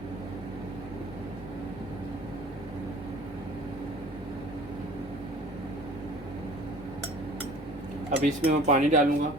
अब इसमें मैं पानी डालूँगा।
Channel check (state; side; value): normal; both; correlation 0.46